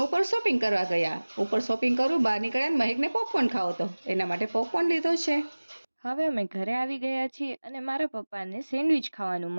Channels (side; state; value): both; inverted; correlation -1.00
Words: શોપિંગ કરવા ગયા. ઉપર શોપિંગ કરું બહાર નીકળ્યા મહેકને પોપકોર્ન ખાવો હતો, એના માટે પોપકોર્ન લીધો છે. હવે અમે ઘરે આવી ગયા છીએ અને મારા પપ્પાને સેન્ડવિચ ખાવાનું